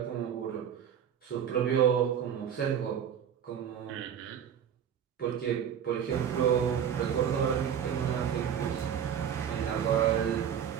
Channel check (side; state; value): left; quieter; 8.6 dB